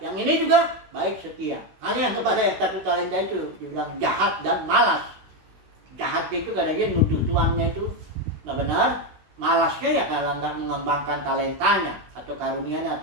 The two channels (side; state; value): left; late; 16 ms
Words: ini juga baik setia. Hanya yang kepada yang 1 talenta itu dibilang jahat dan malas. Jahatnya itu karena dia nuduh tuannya itu nggak benar. Malasnya ya kalau nggak mengembangkan talentanya atau karunianya